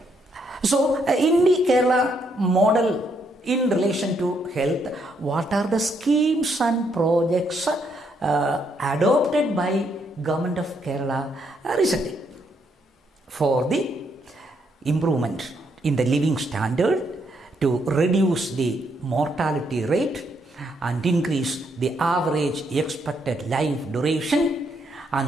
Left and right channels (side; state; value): both; normal; correlation 0.75